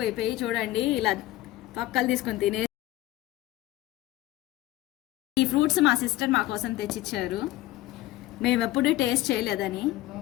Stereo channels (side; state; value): right; quieter; 16.1 dB